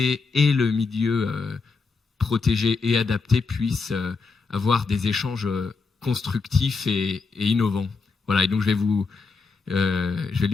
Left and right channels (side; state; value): right; quieter; 4.5 dB